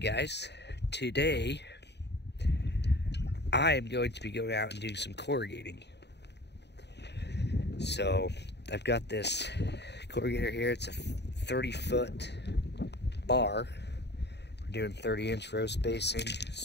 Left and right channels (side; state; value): right; late; 0.50 ms